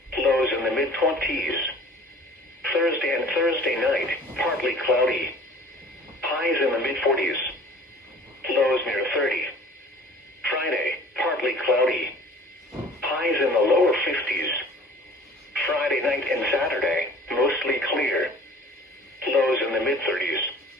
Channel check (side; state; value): both; normal; correlation 0.47